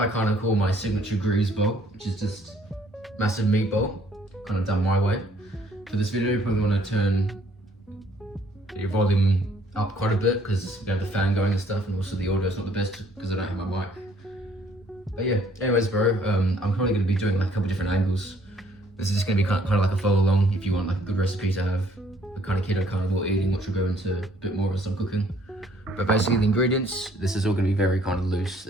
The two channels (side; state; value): both; normal; correlation 0.62